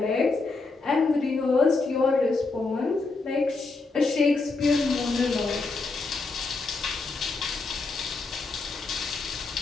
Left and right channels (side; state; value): right; quieter; 3.8 dB